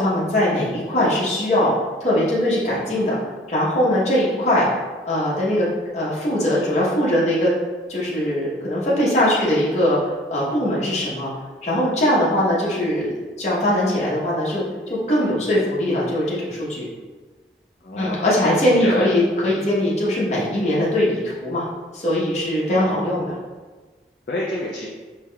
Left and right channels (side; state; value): both; normal; correlation 0.51